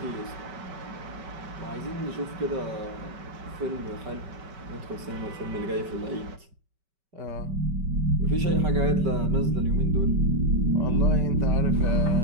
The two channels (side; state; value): left; late; 5.2 ms